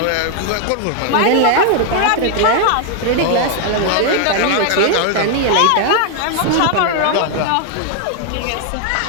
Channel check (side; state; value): both; different; correlation 0.00